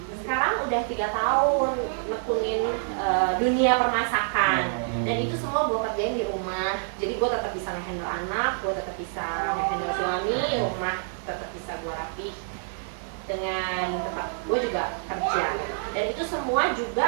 sekarang udah 3 tahun nekunin dunia permasakan, dan itu semua gue kerjain di rumah. Jadi gue tetap bisa ngehandle anak, gue tetap bisa ngehandle suami, rumah tetap bisa gue rapi dengan tempat gue juga kerja. Dan itu semua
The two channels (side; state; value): left; silent; digital silence